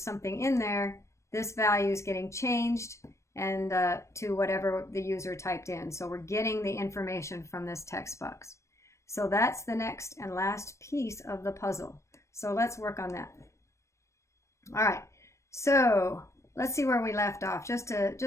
something in there, this value is getting changed and to whatever the user typed in. So we're getting the information from this text box. So that's the next and last piece of the puzzle. So let's work on that. All right, so let's see where we left off, just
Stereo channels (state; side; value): late; right; 0.14 ms